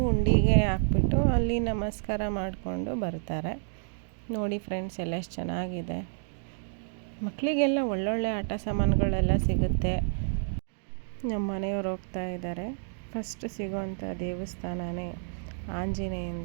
ಹುಂಡಿಗೆ ಹಾಕ್ಬಿಟ್ಟು ಅಲ್ಲಿ ನಮಸ್ಕಾರ ಮಾಡಿಕೊಂಡು ಬರ್ತಾರೆ. ನೋಡಿ ಫ್ರೆಂಡ್ಸ್, ಎಲ್ಲ ಎಷ್ಟು ಚೆನ್ನಾಗಿದೆ. ಮಕ್ಕಳಿಗೆಲ್ಲ ಒಳ್ಳೊಳ್ಳೆ ಆಟ ಸಾಮಾನುಗಳೆಲ್ಲ ಸಿಗುತ್ತೆ. ನಮ್ಮ ಮನೆಯವ್ರು ಹೋಗ್ತಾ ಇದ್ದಾರೆ. ಫಸ್ಟ್ ಸಿಗೋವಂಥ ದೇವಸ್ಥಾನನೇ ಆಂಜನೇಯನ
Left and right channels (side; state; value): left; silent; digital silence